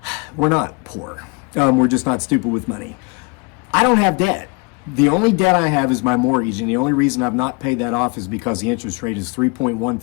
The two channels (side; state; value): right; quieter; 30.9 dB